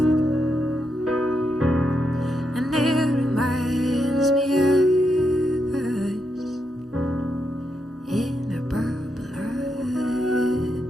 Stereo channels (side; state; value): both; normal; correlation 0.82